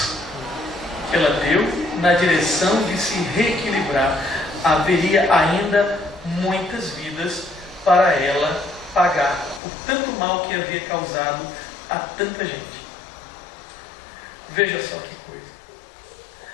que ela deu na direção de se reequilibrar. Haveria ainda muitas vidas para ela pagar por tanto mal que havia causado a tanta gente. Veja só que coisa.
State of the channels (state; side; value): drops out; right; at 9.6 s